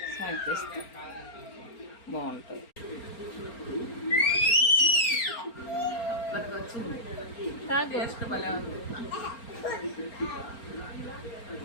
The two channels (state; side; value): late; right; 4.4 ms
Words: సాగు చేస్తే బాగుంటుంది. మనకు వచ్చింది టేస్ట్ భలే ఉంది.